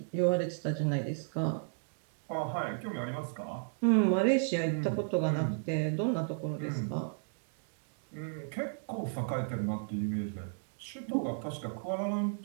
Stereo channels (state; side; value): silent; left; digital silence